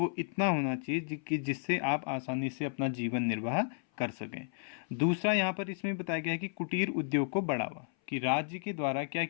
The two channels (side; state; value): right; silent; 56 dB below the other